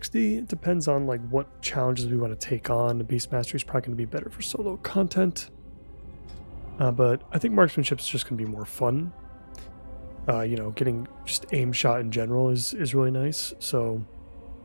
It depends on like what challenges we want to take on. The beast mastery is probably going to be better for solo content. But I think marksmanship is just going to be more fun. You know, getting just aim shot in general is really nice. So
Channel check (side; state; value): both; inverted; correlation -1.00